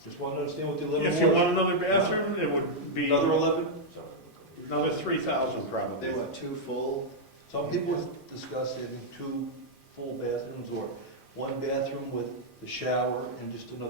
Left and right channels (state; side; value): normal; both; correlation -0.04